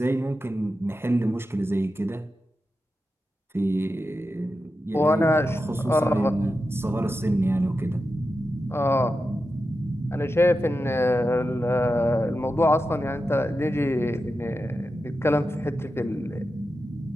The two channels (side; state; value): both; normal; correlation 0.90